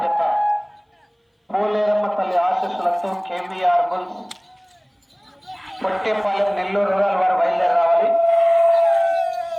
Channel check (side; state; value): both; identical; correlation 1.00